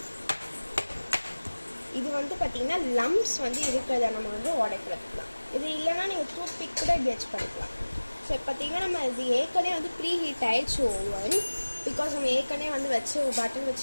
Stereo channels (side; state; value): both; inverted; correlation -1.00